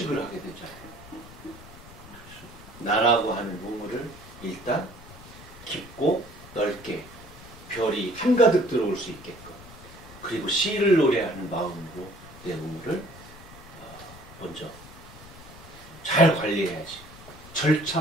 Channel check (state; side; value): noise; left; rumble, 18 dB below the sound